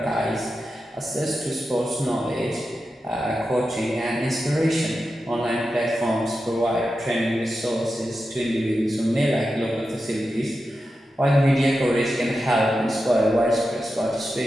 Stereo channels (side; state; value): both; normal; correlation 0.90